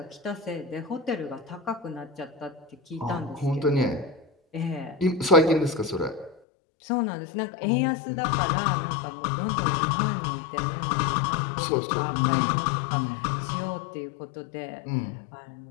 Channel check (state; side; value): drops out; right; at 6.4 s